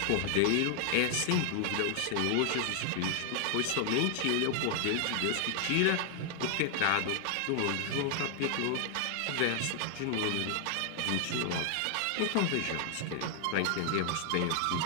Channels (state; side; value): different; both; correlation 0.00